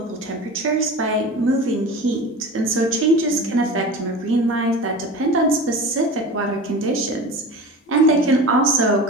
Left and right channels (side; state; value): both; normal; correlation 0.33